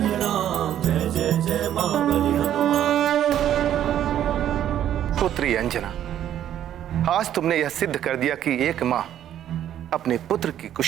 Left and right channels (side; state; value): left; quieter; 10.9 dB